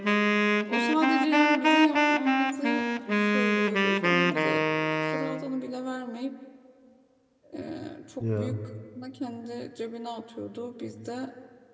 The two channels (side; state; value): both; identical; correlation 1.00